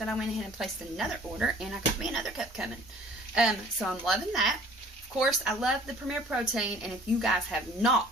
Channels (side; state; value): both; normal; correlation 0.51